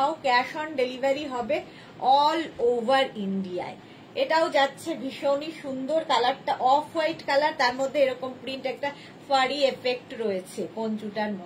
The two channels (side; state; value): both; identical; correlation 1.00